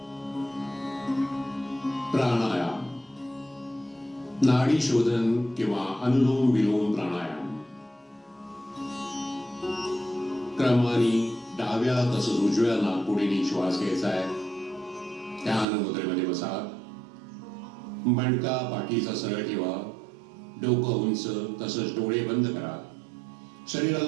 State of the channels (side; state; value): left; drops out; at 15.7 s